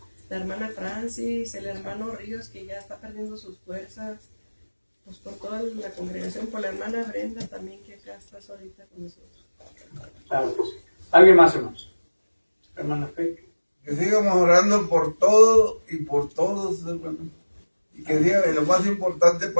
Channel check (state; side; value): inverted; both; correlation -1.00